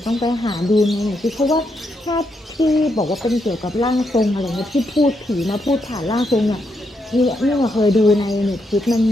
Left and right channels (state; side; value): normal; both; correlation 0.80